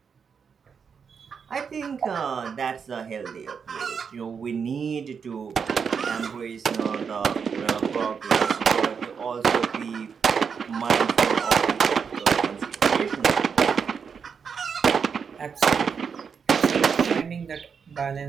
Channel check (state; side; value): quieter; left; 6.3 dB